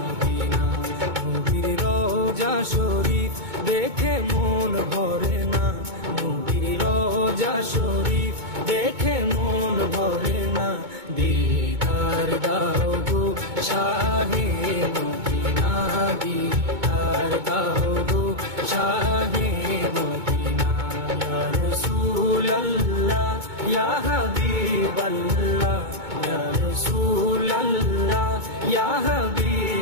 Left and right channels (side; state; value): left; late; 2.2 ms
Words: নবীর রোজা শরীফ দেখে মন ভরে না, নবীর রোজা শরীফ দেখে মন ভরে না। দিদার দাও গো শাহে মদিনা, দিদার দাও গো শাহে মদিনা। ইয়া রাসূলুল্লাহ ইয়া হাবিবাল্লাহ, ইয়া রাসূলুল্লাহ ইয়া